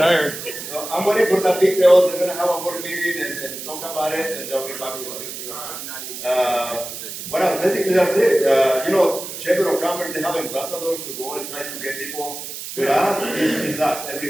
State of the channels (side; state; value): right; noise; hiss, 9 dB below the sound